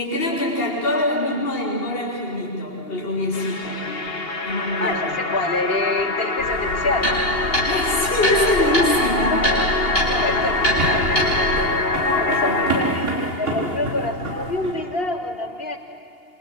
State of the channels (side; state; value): right; late; 2.8 ms